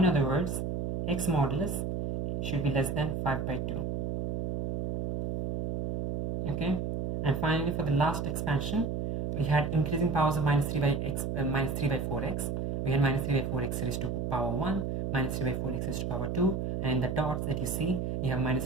other words, x modulus should be less than 5 by 2. Okay, and finally for the last expansion, we had increasing powers of minus 3 by 4x. We had minus 3 by 4x raised to power 1, minus 3 by 4x raised to power 2, and in the dots that you see, you have minus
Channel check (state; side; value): noise; right; hum, 2 dB below the sound